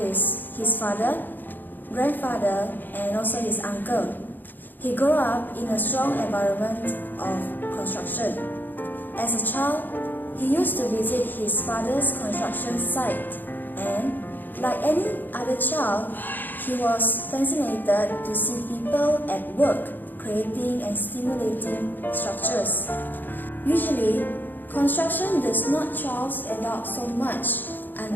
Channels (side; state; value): right; late; 0.089 ms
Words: his father, grandfather, and also his uncle. He grew up in a strong environment of construction. As a child, he used to visit his father's construction site, and like any other child, he was fascinated to see people at work creating and stimulating structures. Usually, construction does not charge adults so much